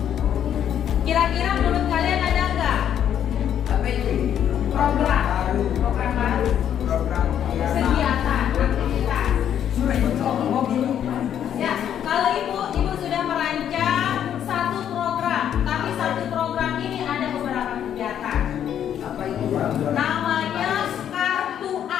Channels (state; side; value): quieter; right; 9.7 dB